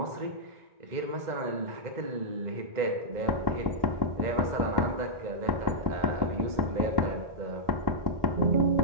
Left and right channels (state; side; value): late; left; 2.0 ms